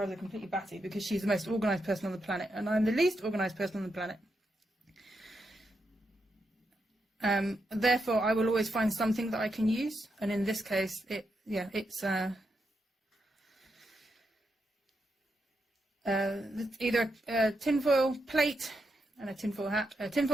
her completely batty because she's the most organised person on the planet and I'm the least organised person on the planet. Therefore, I will always find something that I can use. And in this case, it's either a tinfoil plate and a tinfoil hat, a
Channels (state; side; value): normal; both; correlation 0.84